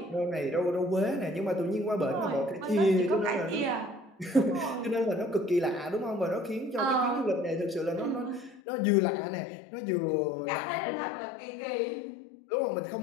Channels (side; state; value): right; drops out; at 8.6 s